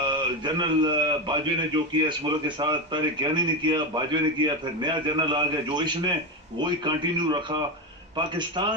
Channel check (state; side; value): normal; both; correlation 0.14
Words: बाजवे ने जो किया इस मुल्क के साथ, पहले ज्ञानी ने किया, बाजवे ने किया, फिर नया जनरल आ गया जो इसने वही कंटिन्यू रखा।